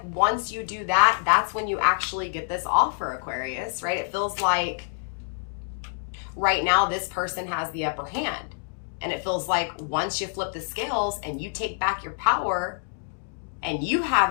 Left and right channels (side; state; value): right; silent; 61 dB below the other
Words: once you do that, that's when you actually get this offer, Aquarius, right? It feels like right now this person has the upper hand. And it feels like once you flip the scales and you take back your power and you